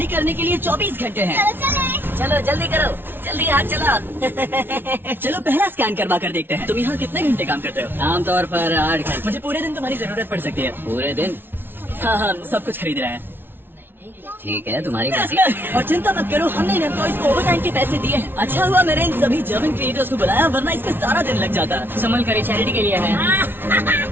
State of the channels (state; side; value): late; left; 0.10 ms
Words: करने के लिए 24 घंटे हैं। चलो चले। चलो जल्दी करो, जल्दी हाथ चला। चलो पहला स्कैन करवा कर देखते हैं। तुम यहाँ कितने घंटे काम करते हो? आमतौर पर 8 घंटे। मुझे पूरे दिन तुम्हारी जरूरत पड़ सकती है। पूरे दिन? हाँ, हम सब कुछ खरीद रहे हैं। ठीक है, तुम्हारी मर्जी। और चिंता मत करो, हमने इन एम्प्लॉइज को ओवर टाइम के पैसे दिए हैं। अच्छा हुआ मैंने इन सभी जर्मन क्रिएटर्स को बुलाया, वरना इसमें सारा दिन लग जाता। संभल कर चैरिटी के लिए है।